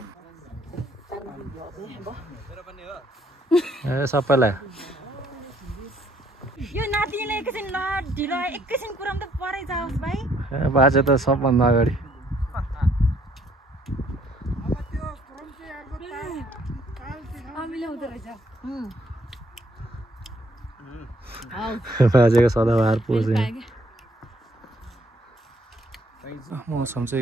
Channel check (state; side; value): normal; both; correlation 0.67